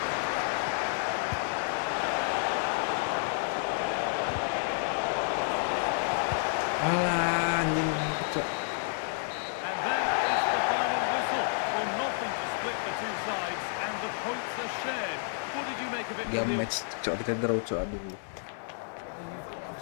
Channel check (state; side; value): silent; right; 58 dB below the other